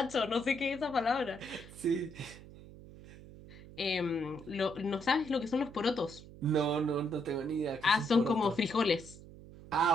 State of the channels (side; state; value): right; noise; hum, 17 dB below the sound